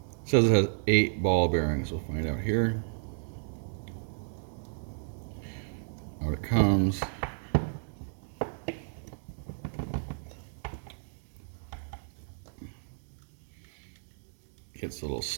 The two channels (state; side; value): silent; left; digital silence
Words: says it has 8 ball bearings. We'll find out here. Out it comes. Gets a little